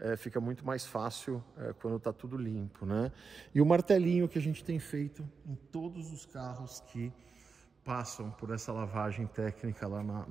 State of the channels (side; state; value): left; quieter; 5.1 dB